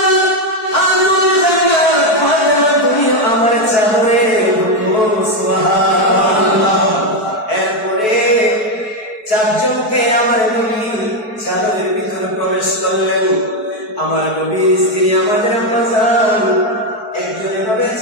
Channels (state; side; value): late; right; 4.6 ms